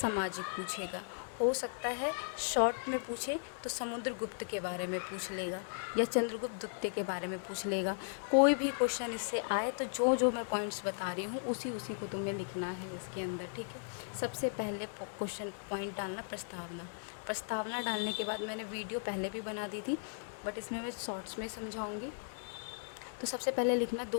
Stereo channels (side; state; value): right; silent; digital silence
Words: सामाजिक पूछेगा। हो सकता है शॉर्ट में पूछे तो समुद्रगुप्त के बारे में पूछ लेगा या चंद्रगुप्त द्वितीय के बारे में पूछ लेगा। कोई भी क्वेश्चन इससे आए तो जो जो मैं पॉइंट्स बता रही हूँ उसी को तुम्हें लिखना है इसके अंदर, ठीक है। सबसे पहले क्वेश्चन पॉइंट डालना प्रस्तावना। प्रस्तावना डालने के बाद मैंने वीडियो पहले भी बना दी थी बट इसमें मैं शॉर्ट्स में समझाऊँगी। तो सबसे पहले लिखना